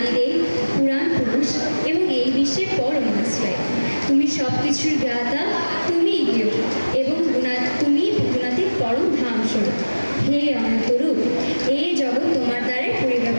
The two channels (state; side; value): inverted; both; correlation -1.00